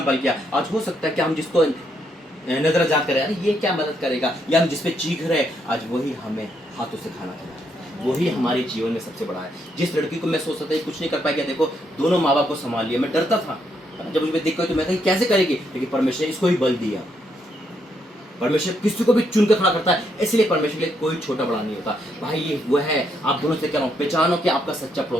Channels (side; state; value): both; normal; correlation 0.76